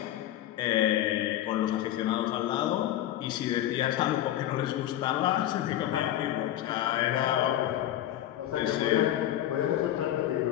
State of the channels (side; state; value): right; quieter; 12.8 dB